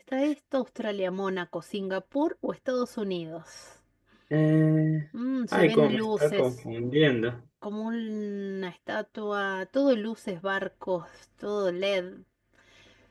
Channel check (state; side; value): identical; both; correlation 1.00